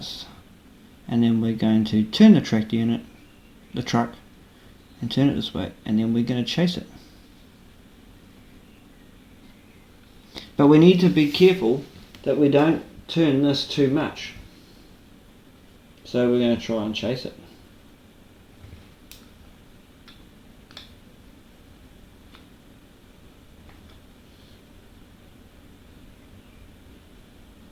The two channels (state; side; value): identical; both; correlation 1.00